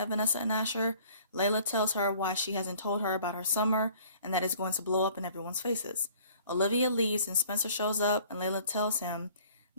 Vanessa and Asher. Layla tells her why she hasn't told her about her summer, and that it's going to blow up in everyone's faces. Olivia leaves, and Spencer shows up, and Layla tells him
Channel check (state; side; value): inverted; both; correlation -0.53